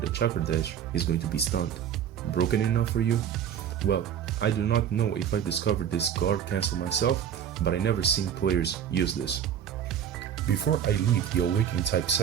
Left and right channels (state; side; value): quieter; left; 9.0 dB